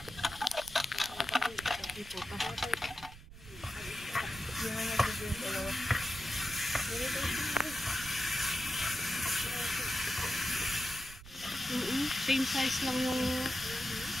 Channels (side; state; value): right; noise; rumble, 17 dB below the sound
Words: Same size lang yung